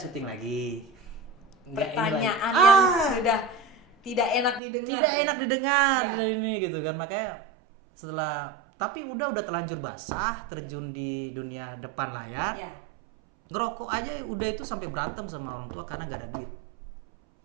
lagi. Nggak ini Pertanyaan lagi. yang sudah tidak enak didengar. Tidak ya? enak didengar Iya. dari ini gitu kan, makanya setelah tapi udah terlanjur basah, terjun di dunia depan layar. Iya. Ngerokok aja udah itu sampai berantem sama orang tua karena nggak ada duit.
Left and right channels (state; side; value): drops out; left; at 4.6 s